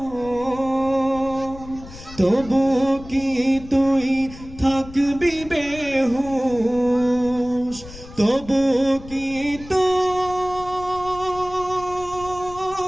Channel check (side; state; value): left; noise; rumble, 16 dB below the sound